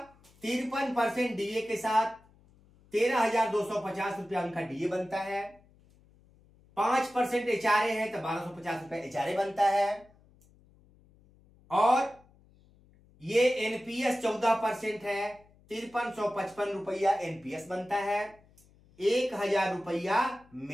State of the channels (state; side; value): noise; left; hum, 29 dB below the sound